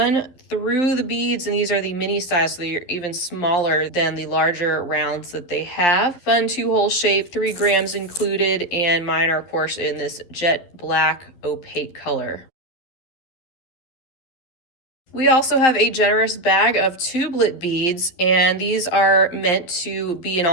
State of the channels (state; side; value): late; right; 11 ms